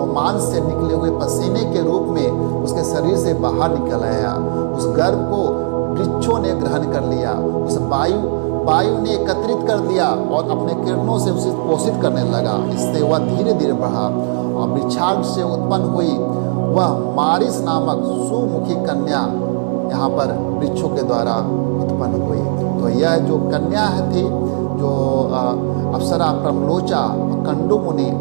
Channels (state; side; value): silent; left; 66 dB below the other